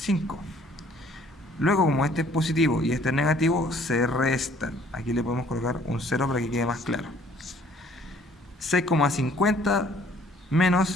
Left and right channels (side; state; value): both; normal; correlation 0.59